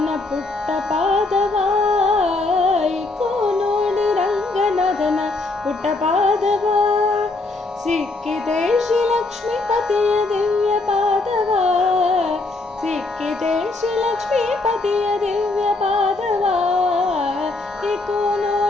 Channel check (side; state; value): right; quieter; 3.3 dB